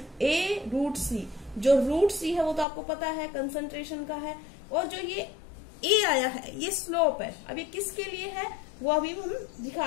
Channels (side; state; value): right; drops out; at 2.7 s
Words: A√C। जो √C है वो तो आपको पता है कंसंट्रेशन का है, और जो ये A आया है ये स्लोप है। अब ये किसके लिए है वो अभी हम